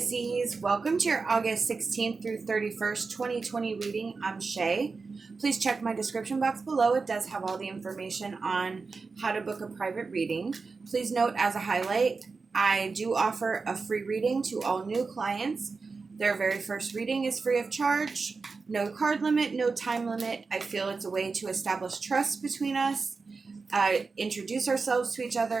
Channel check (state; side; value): quieter; left; 4.4 dB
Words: welcome to your August 16th through 31st, 2020 reading. I'm Shay. Please check my description box below. It does have all the information on how to book a private reading. Please note as a highlight, I do offer a free reading to all new clients. Their very first reading is free of charge. No card limit, no time limit. I feel it's a way to establish trust between us, introduce ourselves to each